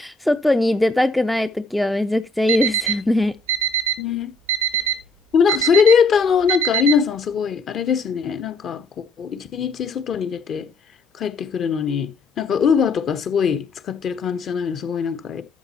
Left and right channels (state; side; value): quieter; right; 3.2 dB